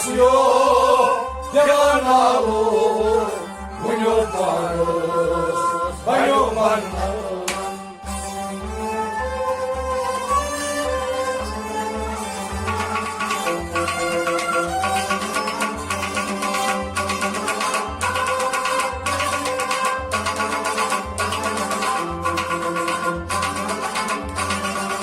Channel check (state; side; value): identical; both; correlation 1.00